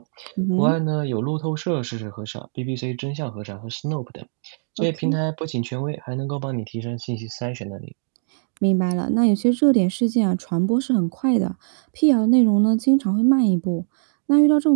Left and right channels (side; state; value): left; silent; digital silence